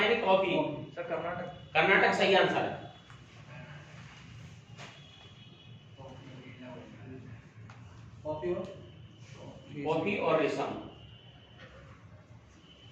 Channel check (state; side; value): identical; both; correlation 1.00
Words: कॉफी। सर कर्नाटक। कर्नाटक सही आंसर है। कॉफी और रेशम।